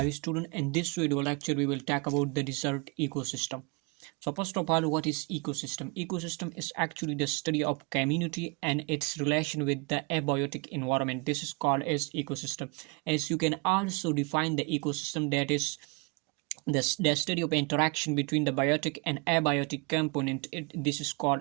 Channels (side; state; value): left; quieter; 30.0 dB